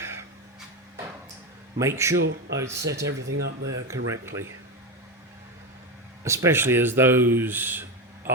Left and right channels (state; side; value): normal; both; correlation 0.15